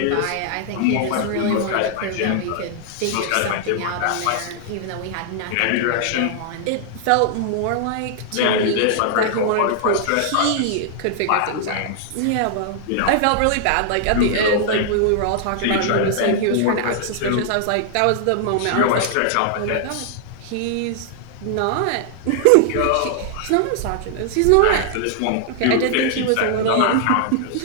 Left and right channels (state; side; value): different; both; correlation -0.01